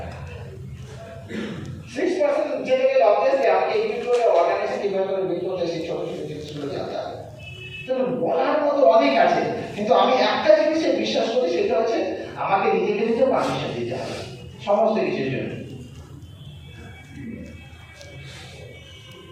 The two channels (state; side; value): identical; both; correlation 1.00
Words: 6% যেতে গেলে অবভিয়াসলি আমাকে একটু করে অর্গানাইজেশন কিভাবে করে বিল্ড করতে সেই ছোট ছোট জিনিসগুলো জানতে হবে। তো বলার মতো অনেক আছে, কিন্তু আমি একটা জিনিসে বিশ্বাস করি, সেটা হচ্ছে আমাকে নিজেকে নিজে পারমিশন দিতে হবে সমস্ত কিছুর জন্য।